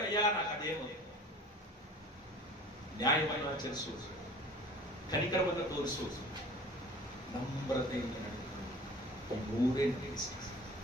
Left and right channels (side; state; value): both; normal; correlation 0.43